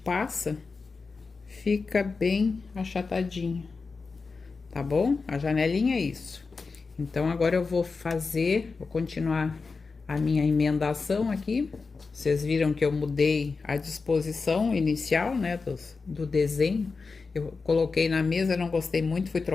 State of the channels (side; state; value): right; quieter; 4.4 dB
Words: fica bem achatadinho, tá bom? A janelinha é isso. Então, agora eu vou continuar a minha emendação aqui. Vocês viram que eu mudei a disposição inicial, né, do desenho. Eu coloquei na mesa, não gostei muito, fui